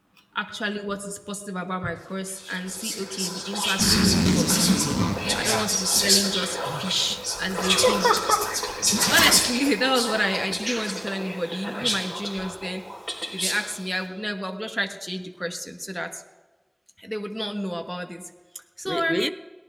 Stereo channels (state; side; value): identical; both; correlation 1.00